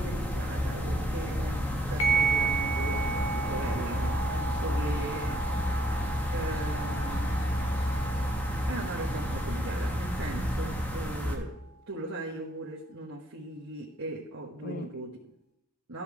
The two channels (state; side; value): normal; both; correlation 0.68